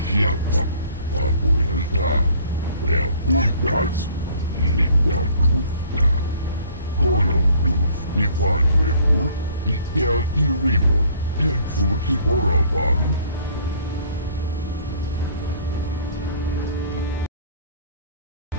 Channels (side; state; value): both; inverted; correlation -0.55